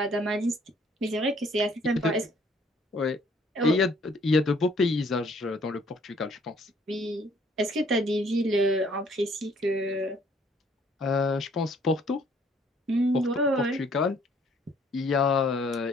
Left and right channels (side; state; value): both; normal; correlation 0.61